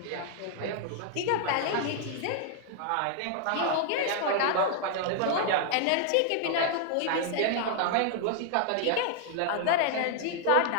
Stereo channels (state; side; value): different; both; correlation 0.00